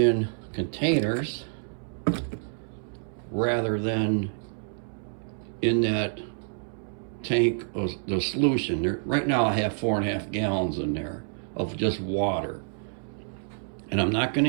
containers rather than in that tank of the solution. Right now I have 4.5 gallons in there of just water, and I'm not going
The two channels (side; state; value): left; silent; 59 dB below the other